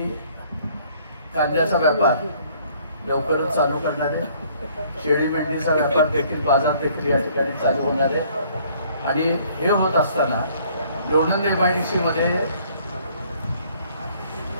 कांद्याचा व्यापार लवकरच चालू करणार आहे. शेळी मेंढीचा व्यापार देखील, बाजार देखील या ठिकाणी चालू होणार आहे. आणि हे होत असताना लोणंद MIDC मध्ये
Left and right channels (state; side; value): inverted; both; correlation -0.60